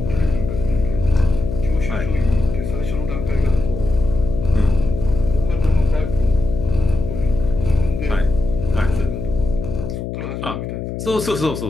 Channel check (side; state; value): left; noise; hum, 6 dB below the sound